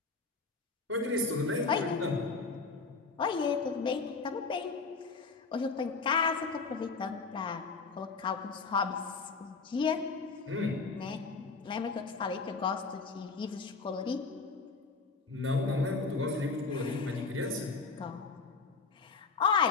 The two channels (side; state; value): right; quieter; 4.4 dB